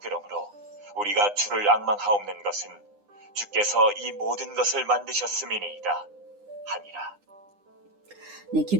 그러므로 우리가 주를 앙망하옵는 것은 주께서 이 모든 것을 만드셨음이니이다 하니라. 네,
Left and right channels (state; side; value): late; left; 9.8 ms